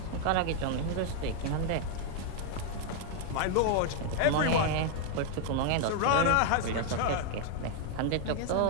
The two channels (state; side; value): different; both; correlation 0.00